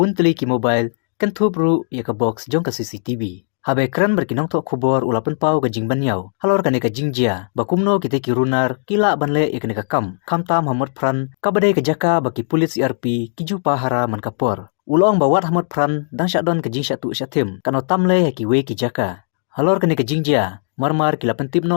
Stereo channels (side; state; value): right; silent; digital silence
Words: ki mobile kentub ru ya ka box jong ka CCTV. Habe kran berkinong tok kubor ulapan pau gajing banyau. Halor kane gajing jia. Bakumno kite kirunar kila banle ikane kam. Kam tam hamot pran kabadai kejaka baki pulit CRP kiju pahara man kapor. Ulong bawat hamot pran dang syadon gajing syatu syatim. Kano tamle ki we kijaka. Halor kane gajing jia. Marmar kila